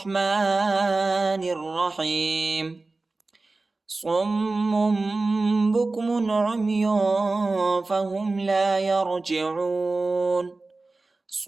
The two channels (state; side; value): quieter; left; 3.4 dB